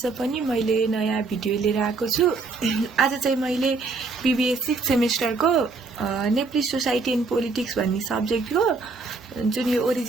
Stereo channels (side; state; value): left; quieter; 4.0 dB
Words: पनि मैले नयाँ video लिएर आएको छु। आज चाहिँ मैले BBA 6th सेमेस्टरको नेपाली सोसाइटी एन्ड पोलिटिक्स भन्ने सब्जेक्टको जुन यो